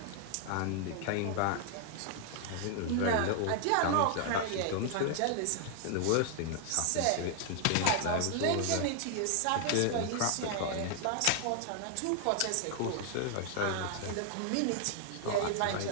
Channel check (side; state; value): both; different; correlation 0.00